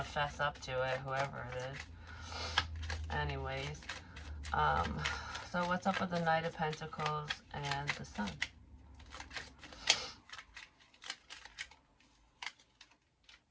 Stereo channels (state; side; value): identical; both; correlation 1.00